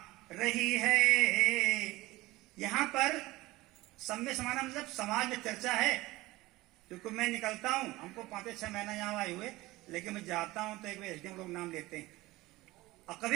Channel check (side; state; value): left; quieter; 19.3 dB